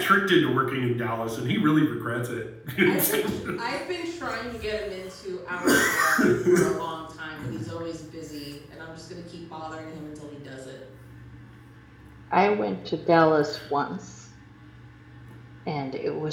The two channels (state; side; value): identical; both; correlation 1.00